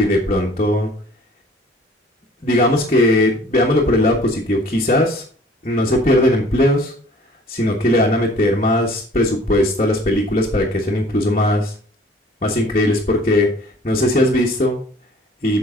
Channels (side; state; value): both; normal; correlation 0.52